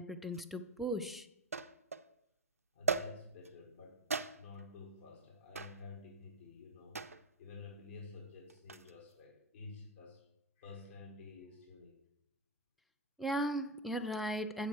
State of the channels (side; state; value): both; normal; correlation 0.07